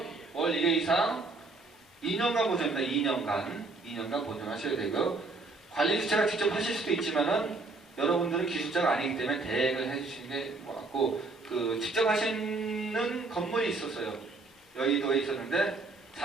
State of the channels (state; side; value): quieter; left; 3.4 dB